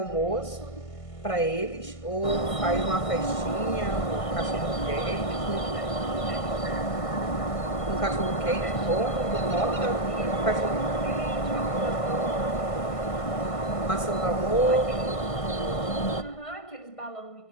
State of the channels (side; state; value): right; late; 1.5 ms